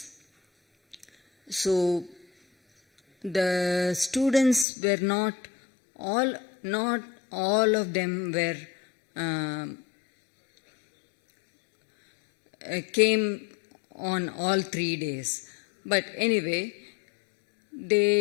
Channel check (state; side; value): drops out; right; at 4.7 s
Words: So the students were not all of them were came on all 3 days. But anyway,